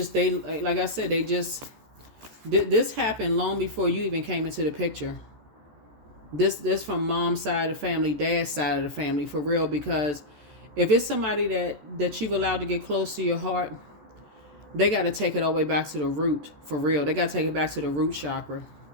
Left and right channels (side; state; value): left; late; 13 ms